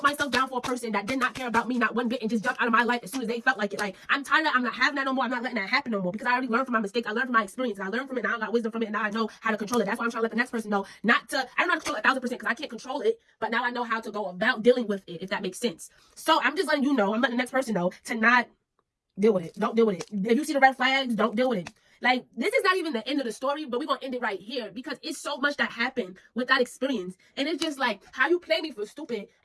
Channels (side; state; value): both; identical; correlation 1.00